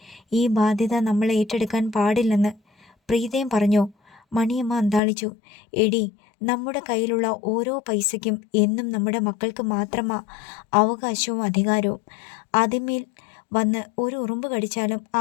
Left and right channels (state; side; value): drops out; right; at 5.0 s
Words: ഈ ബാധ്യത നമ്മൾ ഏറ്റെടുക്കാൻ പാടില്ലെന്ന് പ്രീതയും പറഞ്ഞോ? മണിയമ്മ അന്താളിച്ചു. എടി, നമ്മുടെ കയ്യിലുള്ള ഓരോ പൈസയ്ക്കും എന്നും നമ്മുടെ മക്കൾക്ക് മാത്രമാ അവകാശവും അധികാരവും. അതിന്മേൽ വന്ന് ഒരു ഉറുമ്പ് കടിച്ചാലും